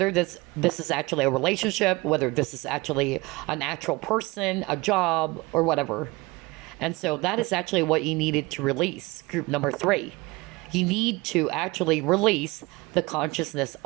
this is actually a relationship, whether this is actually an actual person, a job, or whatever. And so that is actually what you needed to release, group number 3. You need to actually release the consciousness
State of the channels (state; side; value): quieter; left; 22.8 dB